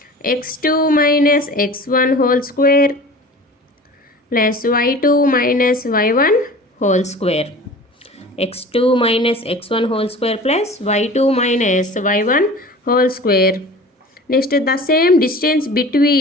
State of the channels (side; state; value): both; normal; correlation 0.40